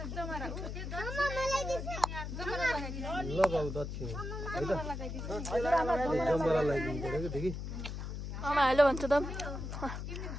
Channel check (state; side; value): noise; left; hum, 6 dB below the sound